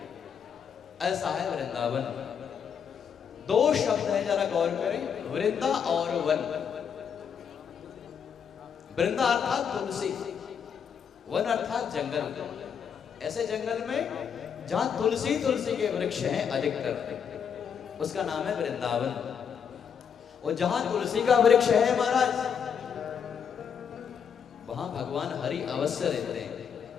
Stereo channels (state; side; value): quieter; right; 7.4 dB